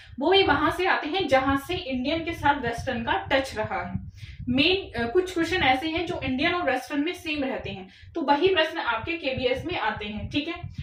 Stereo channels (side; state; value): both; identical; correlation 1.00